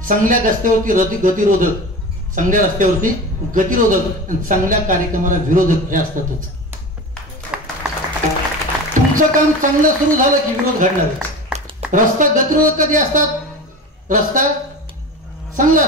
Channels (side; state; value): both; normal; correlation 0.31